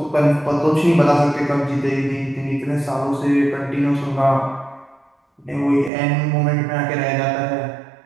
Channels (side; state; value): left; drops out; at 5.9 s